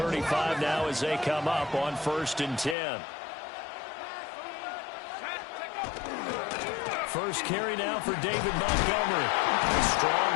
now as they come up on 1st and 10. First carry now for David Montgomery. Strong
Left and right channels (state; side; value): drops out; right; at 2.8 s